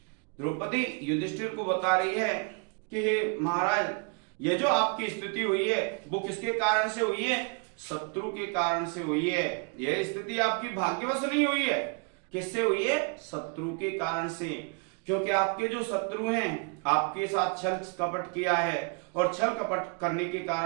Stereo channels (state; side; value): quieter; left; 36.2 dB